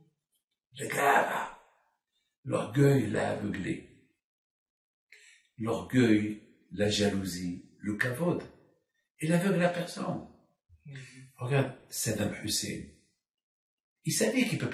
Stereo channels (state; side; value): identical; both; correlation 1.00